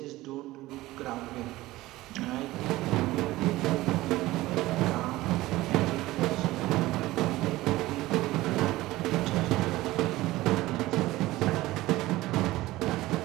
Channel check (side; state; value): left; quieter; 17.8 dB